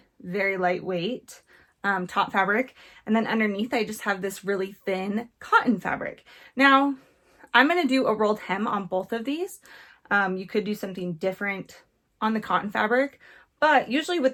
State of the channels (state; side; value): identical; both; correlation 1.00